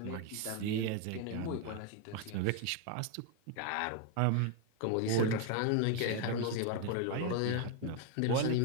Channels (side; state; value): both; different; correlation 0.01